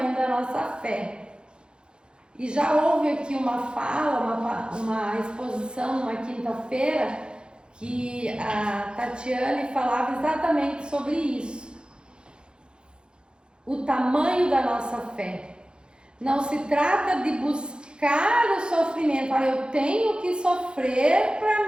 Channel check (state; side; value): late; left; 0.050 ms